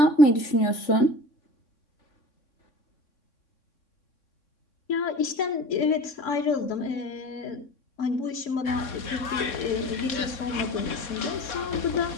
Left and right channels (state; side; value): late; right; 3.6 ms